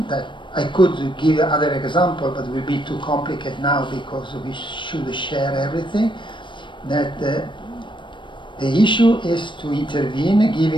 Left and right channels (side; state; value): right; late; 0.23 ms